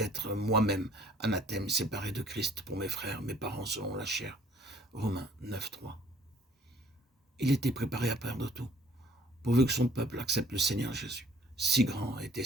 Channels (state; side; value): normal; both; correlation 0.58